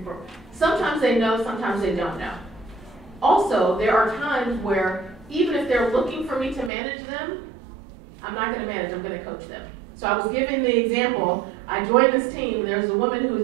for... Sometimes they know, sometimes they don't know. Also, there are times where even if they're looking for me to manage them, I'm not going to manage, I'm going to coach them. So I was giving the example, I joined this team, and there's a woman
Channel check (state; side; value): drops out; left; at 6.7 s